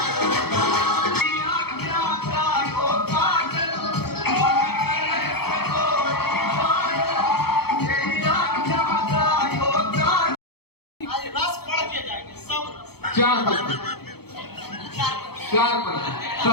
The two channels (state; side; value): late; right; 0.96 ms